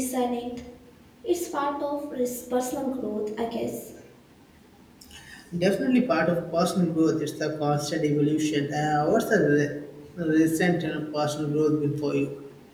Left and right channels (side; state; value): both; identical; correlation 1.00